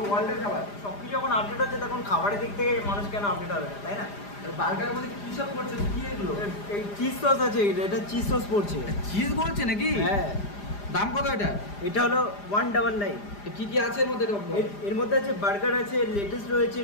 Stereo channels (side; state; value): right; late; 4.9 ms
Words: ওয়ার্ল্ডের খাবার। সব কিছু যখন আপডেট হচ্ছে তখন খাবারের দিক থেকে মানুষ কেন আপডেট হবে না, তাই না? বার্গারের মধ্যে কী সব করছে, কি এগুলো? এই চিজ সস আছে, এটা চিজ সস পড়ছে। চিজ বলছে নাকি? হ্যাঁ। দাম কত এটা? এটা হলো 199। কি কি আছে এর মধ্যে? এর মধ্যে আছে বার্গার আছে, লেটুস রয়েছে,